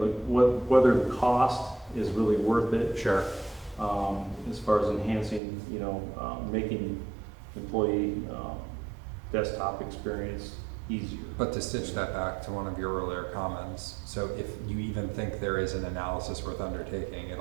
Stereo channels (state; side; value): drops out; left; at 5.4 s